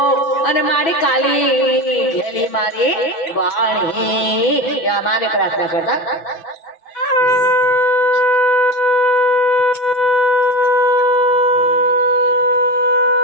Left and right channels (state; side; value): late; right; 6.1 ms